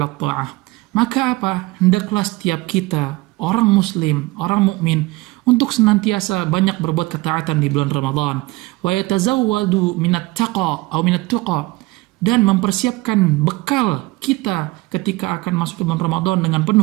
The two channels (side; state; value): left; quieter; 21.4 dB